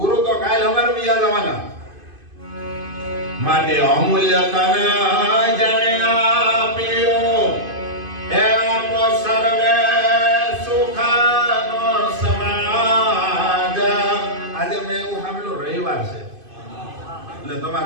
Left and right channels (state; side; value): late; left; 2.5 ms